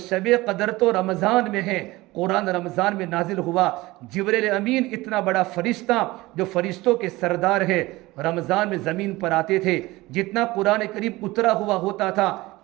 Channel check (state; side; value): quieter; left; 19.9 dB